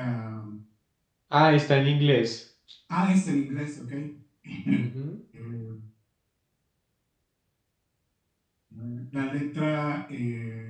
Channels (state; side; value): identical; both; correlation 1.00